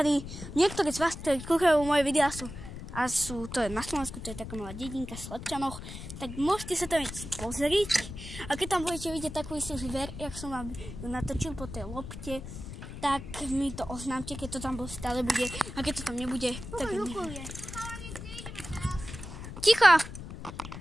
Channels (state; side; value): noise; left; rumble, 10 dB below the sound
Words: Niektorí z vás, ktorí kúkajú moje videá, to je na Slovensku, to je taká malá dedinka v Slepčanoch, tak môžete sa tam pozrieť. A keď tam budete vidieť takú istú zver, jak som vám ju natočil po tej lopte, tak mi to oznámte, keď to tam stále bude. A keď to tam nebude, tak neviem. Ticho!